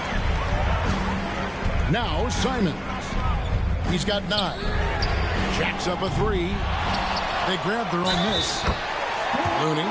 Now Simons. He's got 9. Jacks up a 3. They grab their own miss. Looney.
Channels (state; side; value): identical; both; correlation 1.00